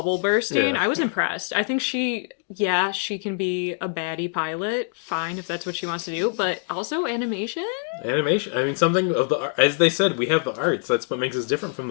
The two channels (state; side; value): silent; right; 60 dB below the other